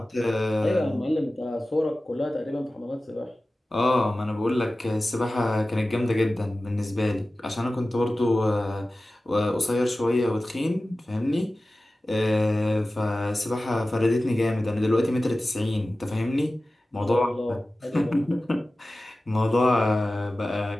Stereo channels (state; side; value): normal; both; correlation 0.96